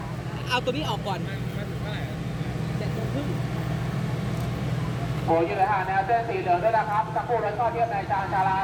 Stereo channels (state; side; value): identical; both; correlation 1.00